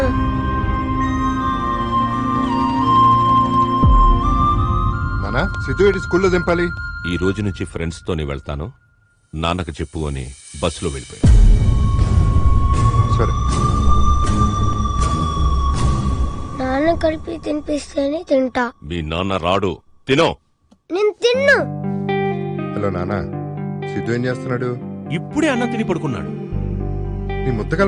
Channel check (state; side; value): identical; both; correlation 1.00